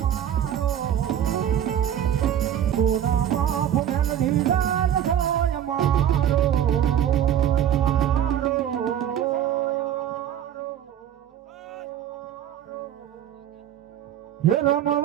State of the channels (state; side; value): quieter; left; 10.2 dB